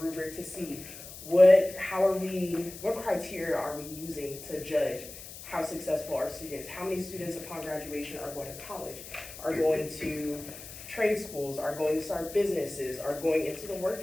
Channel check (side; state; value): left; noise; hiss, 14 dB below the sound